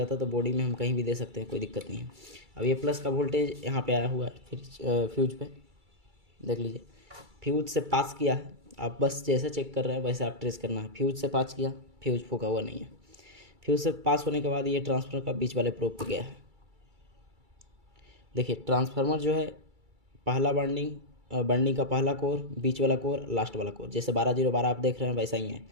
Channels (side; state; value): left; late; 2.3 ms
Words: है, तो बॉडी में हम कहीं भी दे सकते हैं, कोई दिक्कत नहीं है। अब ये प्लस का वोल्टेज यहाँ पे आया हुआ है, फिर फ्यूज पे देख लीजिए, फ्यूज से पास किया है। आप बस जैसे चेक कर रहे हैं वैसे आप ट्रेस करना है। फ्यूज से पास किया, फ्यूज फूका हुआ नहीं है। फ्यूज से पास होने के बाद ये ट्रांसफार्मर का बीच वाले प्रोब पे गया है। देखिए ट्रांसफार्मर जो है पहला बर्निंग का पहला कोर, बीच वाला कोर, लास्ट वाला कोर, जैसे 12-0-12 आप देख रहे हैं वैसा ही है।